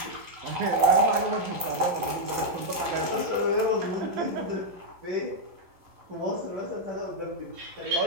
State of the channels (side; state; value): left; late; 11 ms